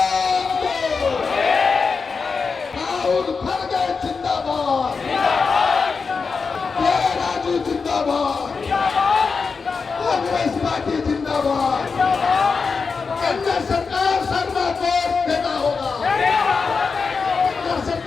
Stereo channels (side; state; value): right; quieter; 5.0 dB